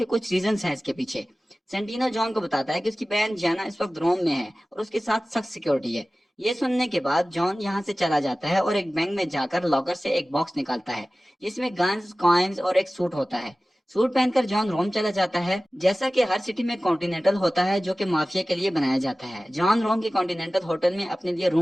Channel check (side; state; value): both; normal; correlation 0.97